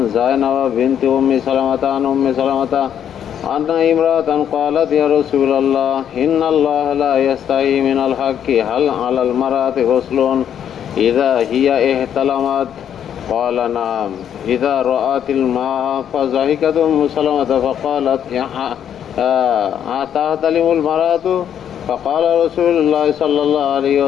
زينب بنت أم سلمة عن أم سلمة أن امرأة قالت يا رسول الله إن الله لا يستحي من الحق هل على المرأة غسل إذا هي احتلمت؟ قال نعم إذا رأت الماء فضحكت أم سلمة فقالت أتحتلم المرأة؟ فقال رسول الله صلى الله عليه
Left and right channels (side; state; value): right; quieter; 9.3 dB